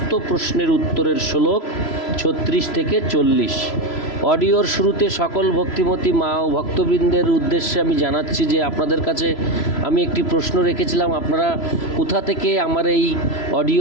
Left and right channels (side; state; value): right; late; 3.0 ms